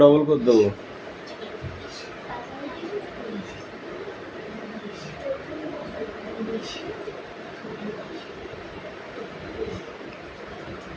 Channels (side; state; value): both; identical; correlation 1.00